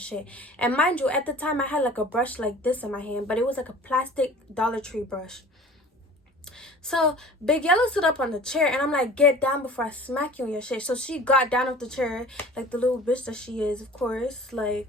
And mind you, at the time I had like a brush like this in my hand, but it was like a plastic Dollar Tree brush. So Big Yellow stood up on the chair and I'm like, get down before I smack you in your shit. So she got down off the chair, like the little bitch that she is, of course. Like,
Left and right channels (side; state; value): both; normal; correlation 0.44